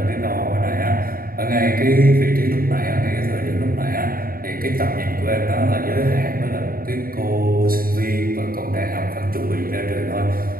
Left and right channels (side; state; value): left; late; 0.42 ms